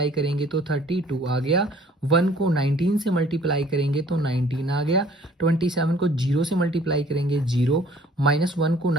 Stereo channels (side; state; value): both; normal; correlation 0.56